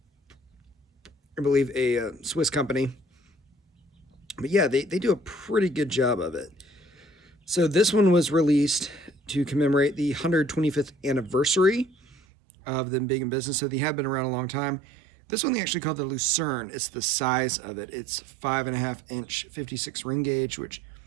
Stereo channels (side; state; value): left; drops out; at 12.2 s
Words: believe, a Swiss company. But yeah, they do a pretty good job of it. So this one was released to commemorate the 125th anniversary of them being in business. So they have been around a long time. This one they actually call the Lucerne. It's the size of it. It's 5.5 inch 56 ring gauge, which